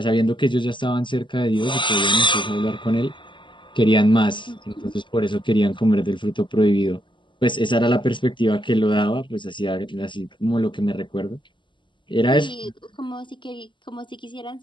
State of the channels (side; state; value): right; late; 0.24 ms